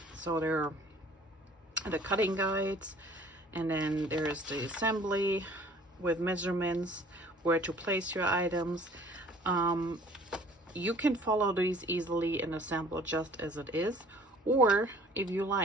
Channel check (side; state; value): both; normal; correlation 0.52